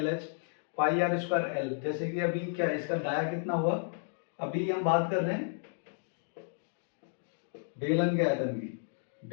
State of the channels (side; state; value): right; silent; digital silence